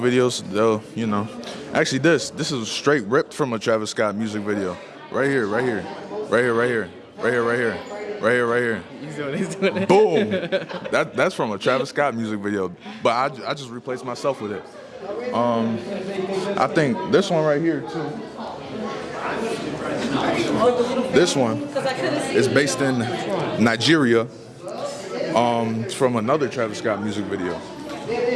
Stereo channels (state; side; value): identical; both; correlation 1.00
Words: They'll, you know, actually this is straight ripped from a Travis Scott music video. Right here. He's doing it. Boom. That's from a Travis Scott music video. But I just replaced myself with it. I think this one right here too. This one is based in Nigeria. It's from another Travis Scott music video.